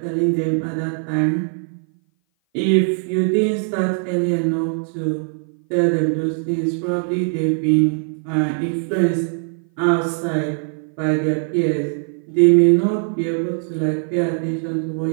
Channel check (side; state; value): left; silent; 58 dB below the other